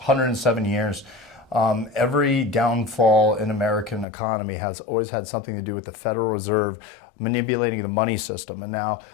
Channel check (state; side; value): drops out; right; at 4.0 s